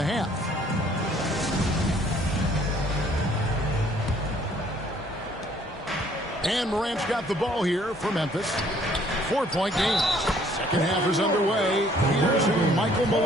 half. And Morant's got the ball here for Memphis. 4-point game. Second half is underway. Here's who Michael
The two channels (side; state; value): both; normal; correlation 0.61